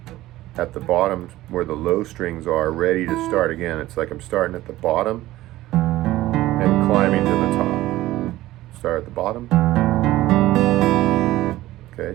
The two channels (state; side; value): quieter; left; 16.3 dB